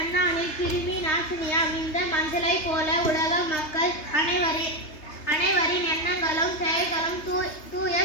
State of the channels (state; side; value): late; right; 3.3 ms